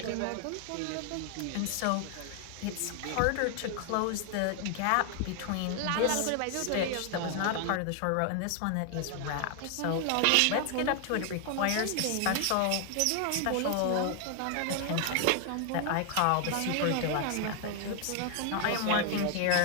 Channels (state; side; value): different; both; correlation 0.00